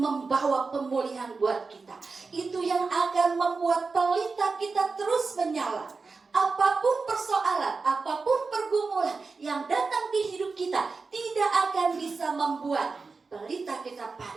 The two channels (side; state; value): left; quieter; 4.3 dB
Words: pemulihan buat kita. Itu yang akan membuat pelita kita terus menyala. Apapun persoalan, apapun pergumulan yang datang di hidup kita tidak akan bisa membuat pelita kita